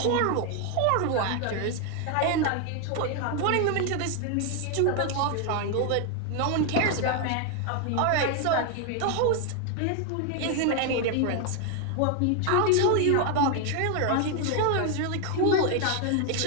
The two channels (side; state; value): both; different; correlation 0.01